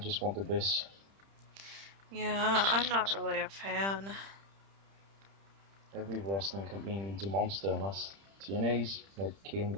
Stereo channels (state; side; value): late; left; 30 ms